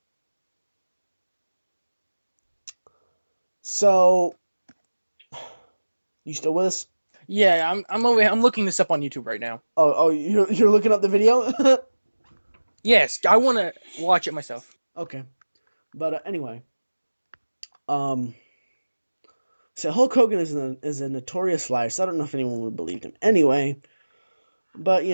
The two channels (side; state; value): both; inverted; correlation -1.00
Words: so you still with us? yeah. I'm looking this up on YouTube right now. Oh, you're looking up the video? Yes, I want to watch it myself. Okay, but anyway, um, so Hulk Hogan is a notorious liar. So I don't know if anyone would believe him. Anyway, but